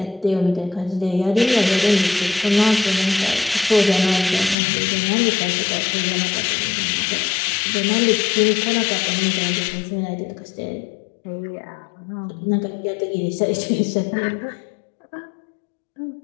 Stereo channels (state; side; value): drops out; right; at 4.5 s